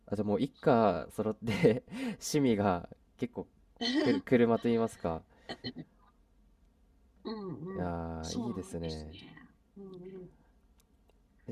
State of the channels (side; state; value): both; identical; correlation 1.00